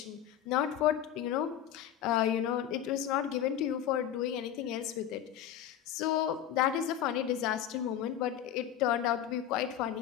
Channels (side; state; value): right; quieter; 10.4 dB